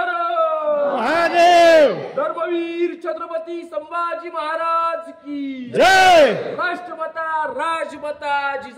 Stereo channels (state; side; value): identical; both; correlation 1.00